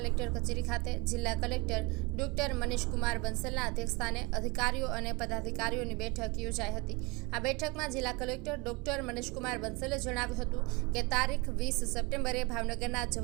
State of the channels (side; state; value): left; quieter; 26.4 dB